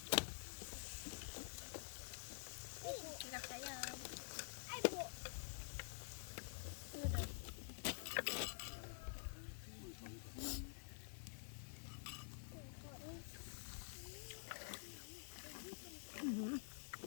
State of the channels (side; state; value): right; silent; digital silence